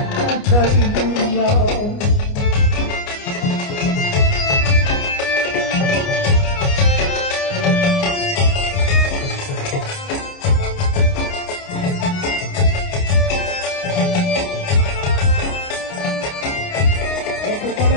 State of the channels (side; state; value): right; late; 29 ms